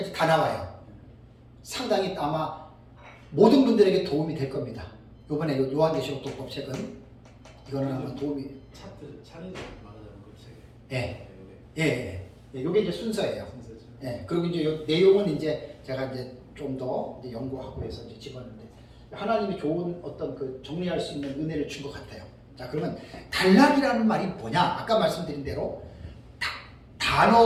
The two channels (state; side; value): identical; both; correlation 1.00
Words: 다 나와요. 상당히 아마 모든 분들에게 도움이 될 겁니다. 요번에 요한계시록 독법 책은 이거는 아마 도움이. 차례도 말하자면 그 책에. 예. 요게 이제 순서예요. 예. 그리고 이제 요 내용은 이제 제가 이제 좀 더 연구하고 해서 이제 집었는데 하나님이 좋은 어떤 그 정리할 수 있는 은혜를 준 것 같아요. 자, 그러면 단락이라는 말이 뭐냐? 아까 말씀드린 대로